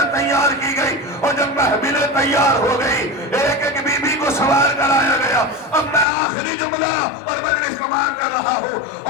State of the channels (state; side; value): drops out; right; at 6.1 s